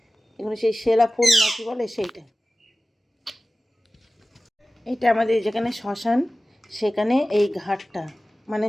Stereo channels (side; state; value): both; normal; correlation 0.96